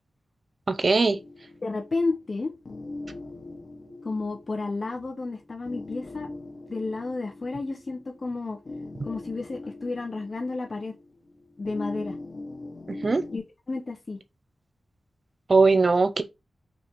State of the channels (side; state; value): both; normal; correlation 0.93